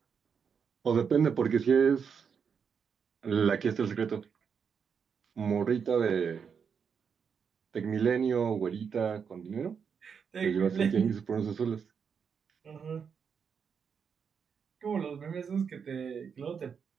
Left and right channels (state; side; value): quieter; left; 6.6 dB